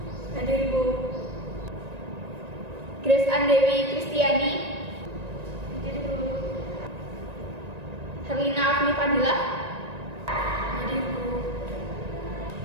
Hadir, Bu. Grace Andewi Kristiani. Hadir, Bu. Herlina Afni Fadila. Hadir, Bu.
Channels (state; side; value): late; left; 1.9 ms